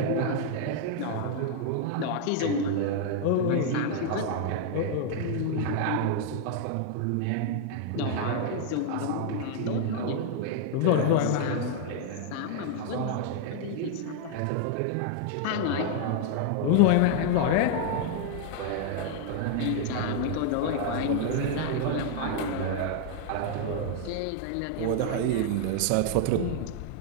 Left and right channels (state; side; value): different; both; correlation 0.00